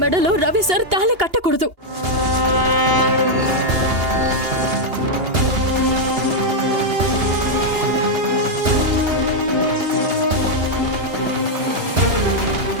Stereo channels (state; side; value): late; left; 2.8 ms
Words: మెడలో రవి సార్ తాళి కట్టకూడదు.